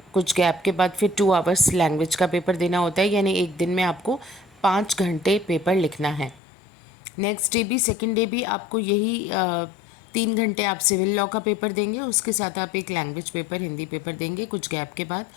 कुछ गैप के बाद फिर 2 आवर्स लैंग्वेज का पेपर देना होता है, यानी एक दिन में आपको 5 घंटे पेपर लिखना है। नेक्स्ट डे भी, सेकेंड डे भी आपको यही 3 घंटे आप सिविल लॉ का पेपर देंगे, उसके साथ आप एक लैंग्वेज पेपर हिंदी पेपर देंगे कुछ गैप के बाद,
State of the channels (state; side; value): drops out; right; at 6.4 s